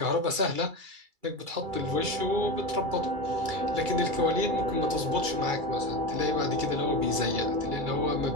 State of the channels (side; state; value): left; late; 2.3 ms